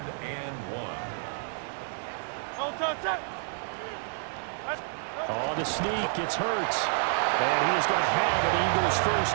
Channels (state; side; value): silent; left; 58 dB below the other